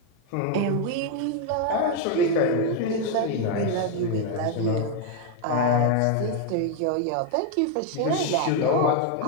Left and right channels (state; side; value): different; both; correlation 0.01